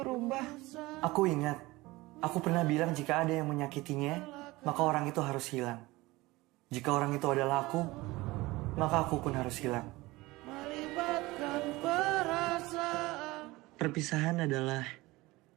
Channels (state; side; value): quieter; left; 20.5 dB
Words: Aku ingat, aku pernah bilang jika ada yang menyakitinya, maka orang itu harus hilang. Jika orang itu adalah aku, maka aku pun harus hilang. melibatkan perasaan Perpisahan adalah